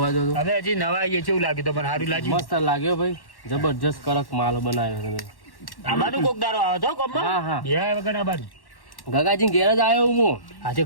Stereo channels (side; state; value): right; late; 1.1 ms